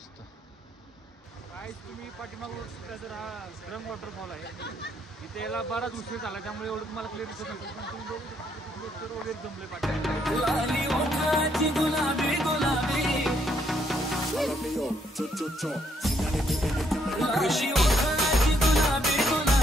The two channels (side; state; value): both; normal; correlation 0.72